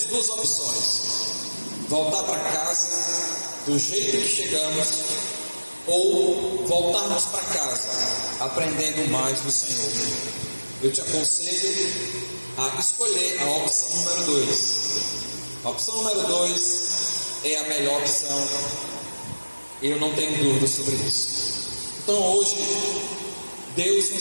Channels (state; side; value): inverted; both; correlation -1.00